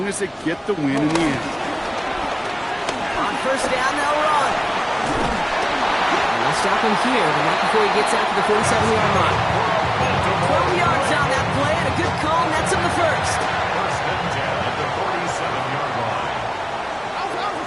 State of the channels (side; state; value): both; identical; correlation 1.00